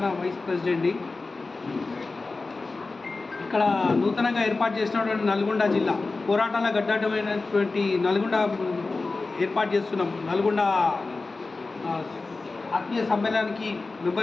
వైస్ ప్రెసిడెంట్ని. ఇక్కడ నూతనంగా ఏర్పాటు చేసినటువంటి నల్గొండ జిల్లా పోరాటాల గడ్డమైనటువంటి నల్గొండ ఏర్పాటు చేస్తున్నాం. నల్గొండ ఆత్మీయ సమ్మేళనానికి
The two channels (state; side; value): quieter; right; 3.7 dB